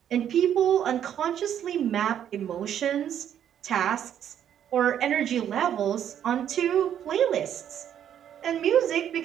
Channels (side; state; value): left; quieter; 9.8 dB